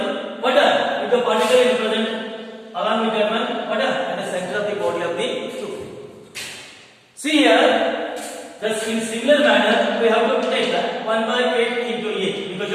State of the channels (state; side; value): identical; both; correlation 1.00